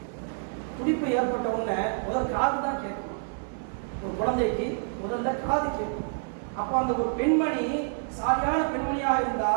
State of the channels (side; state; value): left; silent; digital silence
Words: துடிப்பு ஏற்பட்ட உடனே முதல் காது தான் கேட்கும். ஒரு குழந்தைக்கு முதல்ல காது கேட்கும். அப்போ அந்த ஒரு பெண்மணி சாரியான பெண்மணியாக